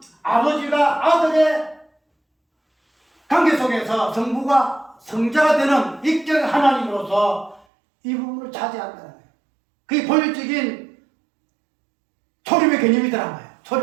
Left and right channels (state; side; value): drops out; left; at 7.7 s